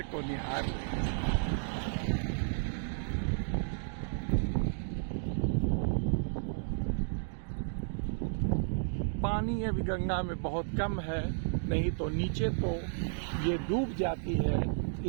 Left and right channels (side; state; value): left; silent; digital silence